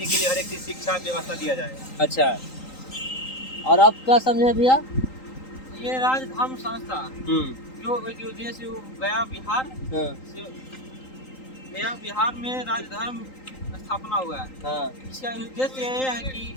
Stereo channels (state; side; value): late; right; 3.8 ms